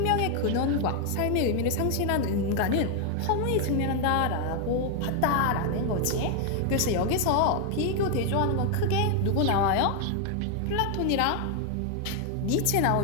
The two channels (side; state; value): both; different; correlation 0.00